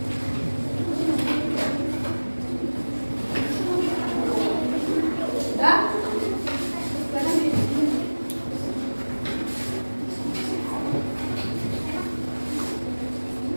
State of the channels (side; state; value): both; inverted; correlation -1.00